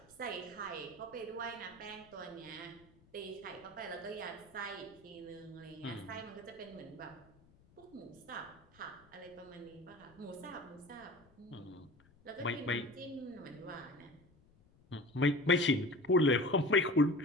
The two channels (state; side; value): noise; left; rumble, 28 dB below the sound